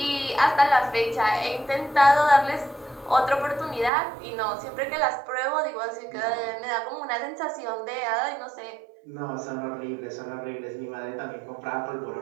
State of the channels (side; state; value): left; drops out; at 3.9 s